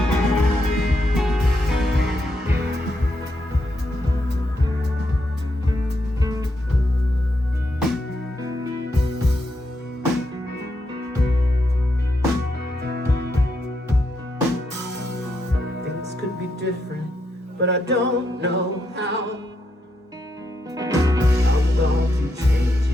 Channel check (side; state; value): both; normal; correlation 0.81